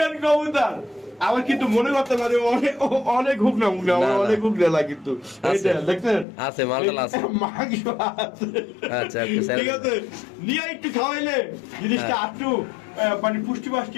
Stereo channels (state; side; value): drops out; right; at 6.2 s